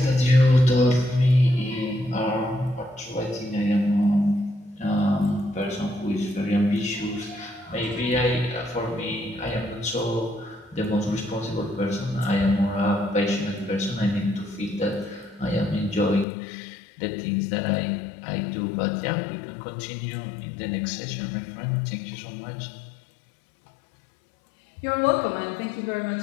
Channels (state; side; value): drops out; right; at 16.2 s